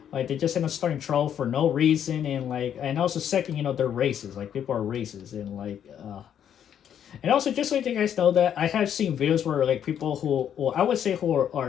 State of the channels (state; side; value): quieter; right; 9.3 dB